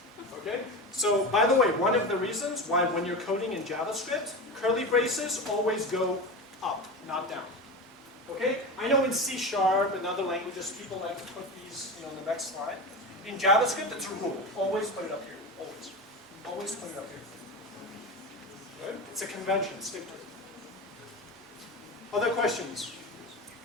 Okay? So, by the way, one of the reasons why when you're coding in JavaScript, curly braces always go up, not down. Okay? I know in C# and other languages, people like to put these in the next slide. In JavaScript, it's a rule. Always put it up here. Always. Always put it up here. Right? It's a convention. Stick to it. Other questions?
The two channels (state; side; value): normal; both; correlation 0.25